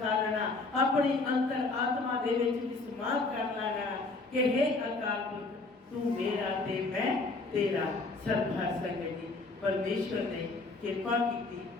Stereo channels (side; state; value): right; quieter; 3.5 dB